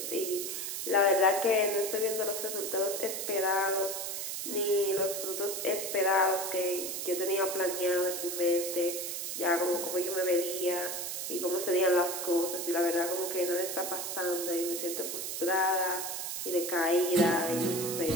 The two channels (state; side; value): noise; right; hiss, 4 dB below the sound